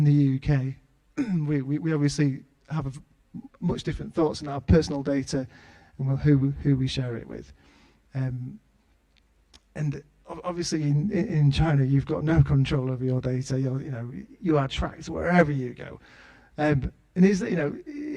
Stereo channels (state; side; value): identical; both; correlation 1.00